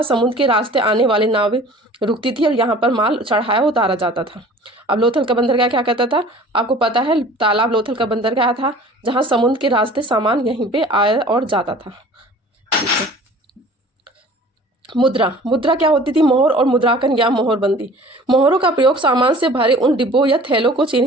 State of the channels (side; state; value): both; normal; correlation 0.46